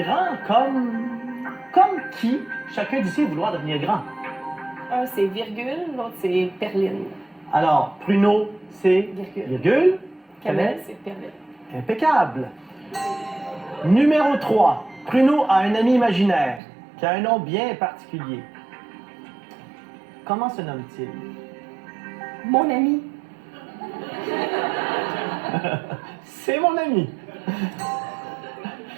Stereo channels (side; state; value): left; drops out; at 16.6 s